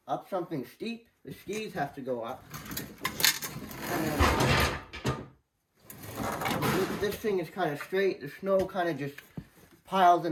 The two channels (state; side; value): identical; both; correlation 1.00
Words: up something steep, the skis have to go up. And then this thing is kind of straight. The snow kind of just piles